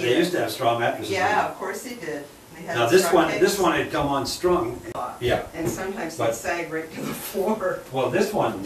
they idea. used to have straw mattresses. Yeah, of course they did. They had Now straw this pegs. one had come unstrung. Yeah. And sometimes But- they sag right to the floor. Well, this one,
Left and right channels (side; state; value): both; identical; correlation 1.00